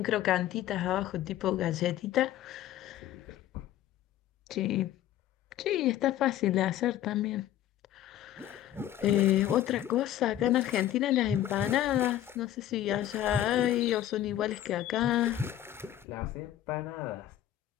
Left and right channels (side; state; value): right; quieter; 12.4 dB